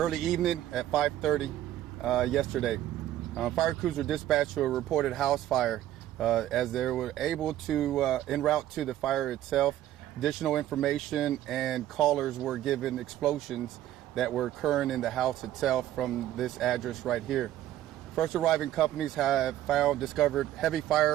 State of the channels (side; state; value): left; quieter; 12.9 dB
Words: evening at 5:30 yesterday. Fire crews were dispatched to a reported house fire. As they were able to, en route to the fire itself, additional information and callers were given explosions that were occurring in the house itself from this address right here. First arriving companies have discovered heavy